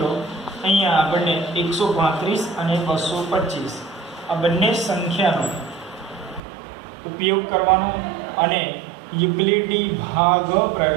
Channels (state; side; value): drops out; left; at 6.4 s